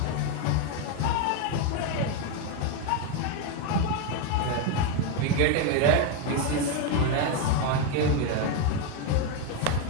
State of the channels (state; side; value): different; both; correlation 0.02